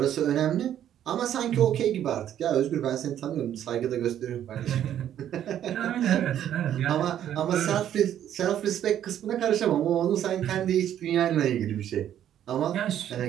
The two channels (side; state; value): left; quieter; 10.7 dB